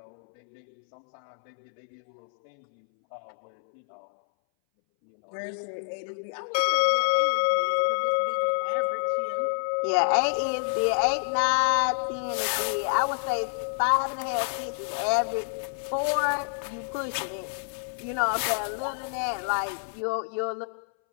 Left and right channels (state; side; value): silent; right; 60 dB below the other